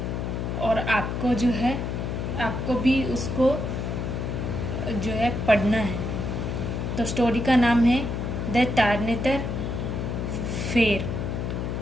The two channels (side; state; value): left; noise; hum, 3 dB below the sound